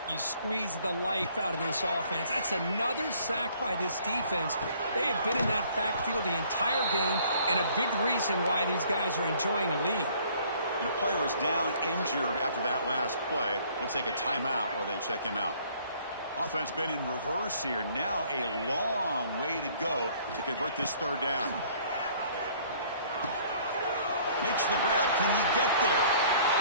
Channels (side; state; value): both; inverted; correlation -0.58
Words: you squeeze the life out of this offense. That's another sack by this defense. They have been in that backfield the entire game, and a big reason why these guys are enjoying a lead. And a player is down injured after that last play. We'll take a timeout while they check him out. Offense been in reverse here. Now a long way to go to convert this third down. Makes the grab. Can he get there?